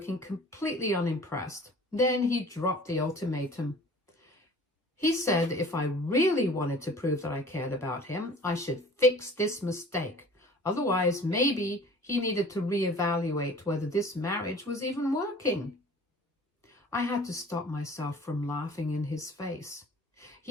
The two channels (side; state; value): both; normal; correlation 0.47